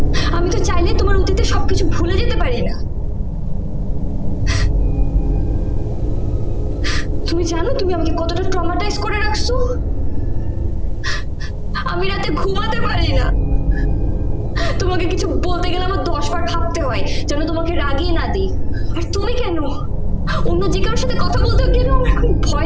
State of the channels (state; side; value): identical; both; correlation 1.00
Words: আমি তো চাইলে তোমার অতীতে সবকিছু ভুলে যেতে পারি না। তুমি জানো তুমি আমাকে কতটা ট্রমাটাইজ করে রাখছো? আমি রাতে ঘুমাতে পারি না। তোমাকে কিছু বলতে গেলে আমার 10 বার ভাবতে হয় যেন তোমাকে রাগিয়ে না দিই। আর তুমি কেন? অন্য যে কারোর সাথে কথা বলতে গেলেও আমার এখন